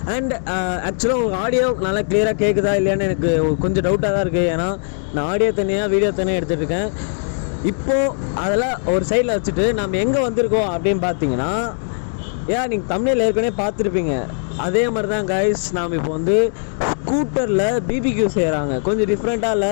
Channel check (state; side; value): silent; right; digital silence